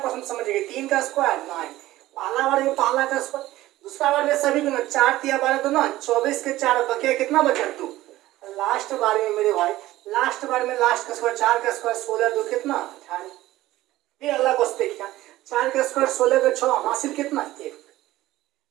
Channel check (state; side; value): quieter; left; 16.2 dB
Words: समझिए, 3 का स्क्वायर 9, पहला बार में पहला का स्क्वायर, दूसरा बार में सभी गुना, 4 3 12 गुना 24 के 4 बकिया कितना बचा 2। लास्ट बार में मेरे भाई लास्ट बार में लास्ट का स्क्वायर, 4 का स्क्वायर 16 2 कितना 18। फिर अगला क्वेश्चन देखिए, 4 का स्क्वायर 16 का 6 हासिल कितना 1।